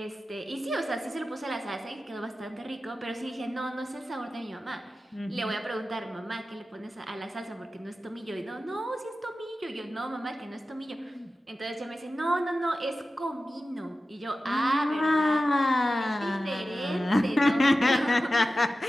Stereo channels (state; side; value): normal; both; correlation 0.94